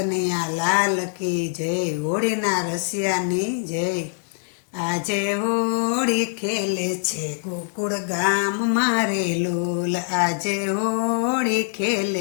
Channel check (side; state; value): right; silent; digital silence